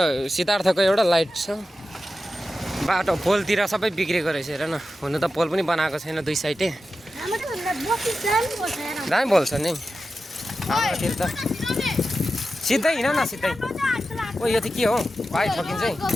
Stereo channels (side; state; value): both; normal; correlation 0.92